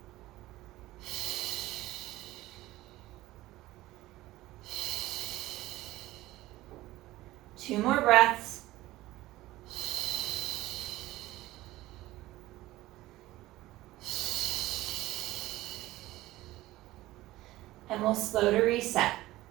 Two more breaths. And we'll slow to reset.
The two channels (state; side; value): quieter; left; 17.0 dB